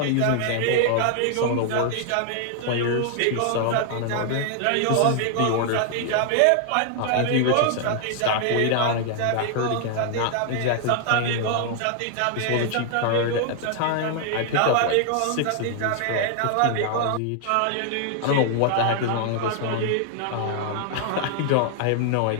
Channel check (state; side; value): different; both; correlation 0.00